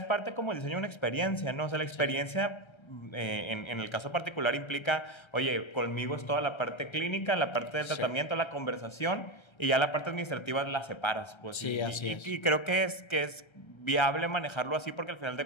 parte como el diseño de una experiencia, ¿no? O sea, la experiencia en el caso particular implica, oye, conmigo es toda la parte clínica, la parte del tratamiento, la conversación, y ya la parte administrativa la separas. Pues, sí, así es. Y creo que es viable manejarlo así, porque al final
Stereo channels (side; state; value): right; late; 1.3 ms